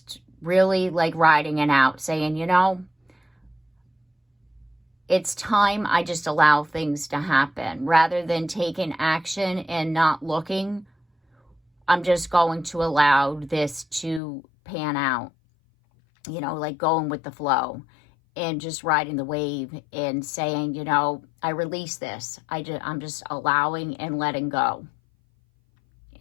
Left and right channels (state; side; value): drops out; right; at 14.2 s